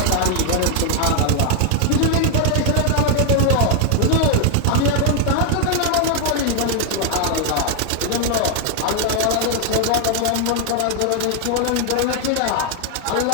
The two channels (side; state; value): both; different; correlation 0.00